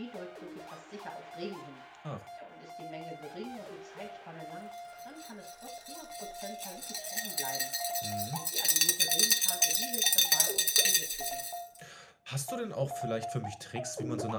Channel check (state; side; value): identical; both; correlation 1.00